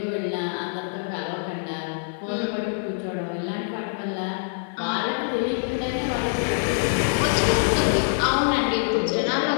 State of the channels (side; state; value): right; silent; digital silence